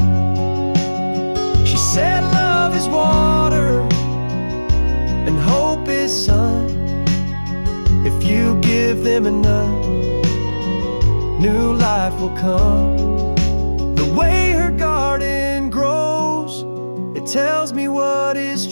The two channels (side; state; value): both; inverted; correlation -1.00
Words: She said love is water and hope is sun. If you give them enough, new life will come. The way her garden grows, it tells me what is